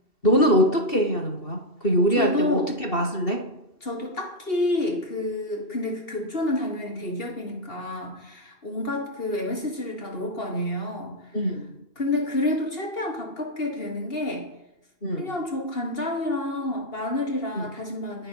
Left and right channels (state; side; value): late; right; 2.7 ms